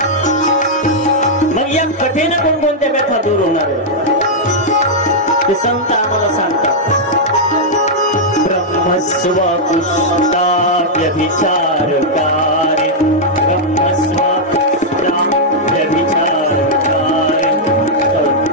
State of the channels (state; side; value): normal; both; correlation -0.05